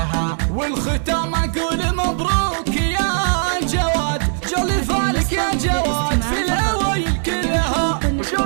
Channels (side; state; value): left; silent; 59 dB below the other